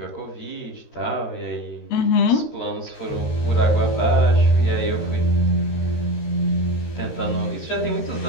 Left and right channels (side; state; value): right; late; 13 ms